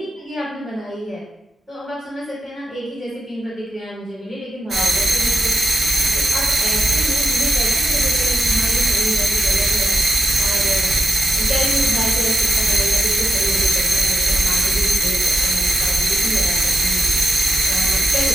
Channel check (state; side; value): normal; both; correlation 0.87